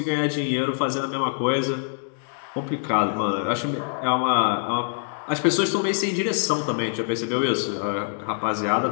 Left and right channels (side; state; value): right; silent; digital silence